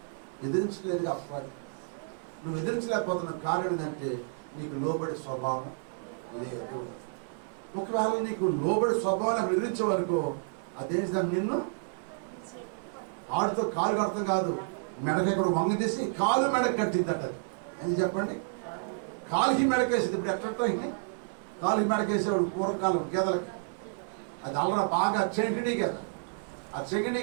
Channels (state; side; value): silent; left; 58 dB below the other